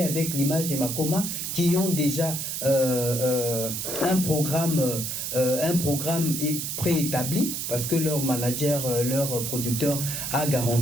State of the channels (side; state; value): right; noise; hiss, 3 dB below the sound